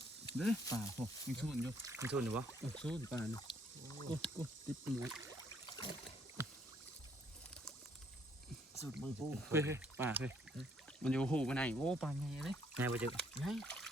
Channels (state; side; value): normal; both; correlation 0.67